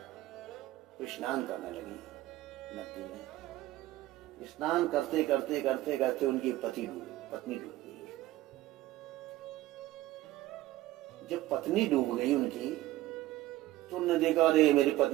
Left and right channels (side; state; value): left; quieter; 16.1 dB